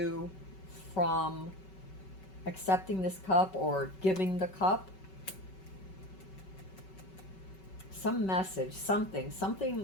from accepting this cup or giving the cup. Some message, something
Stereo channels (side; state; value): right; late; 5.3 ms